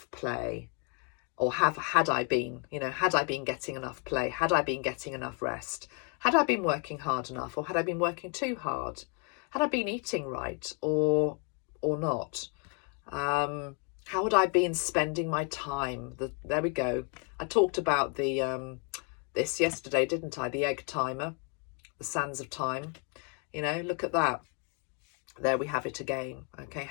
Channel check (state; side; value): quieter; right; 37.8 dB